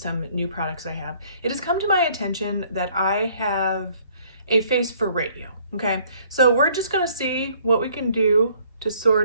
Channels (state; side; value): inverted; both; correlation -0.60